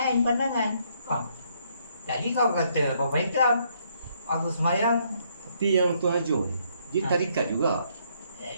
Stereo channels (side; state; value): both; inverted; correlation -0.70